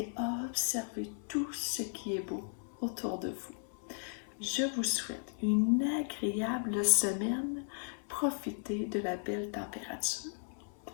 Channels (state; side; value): silent; right; 54 dB below the other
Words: observez tout ce qui est beau autour de vous. Je vous souhaite une agréable semaine. Profitez de la belle température.